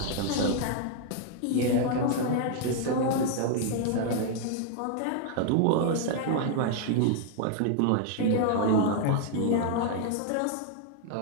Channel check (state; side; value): different; both; correlation 0.00